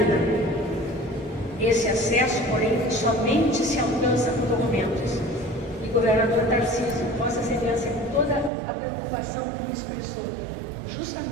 Esse acesso, porém, somente se alcança por documentos. E o governador Tarcísio, Vossa Excelência, com toda a preocupação que expressou,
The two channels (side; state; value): left; drops out; at 8.5 s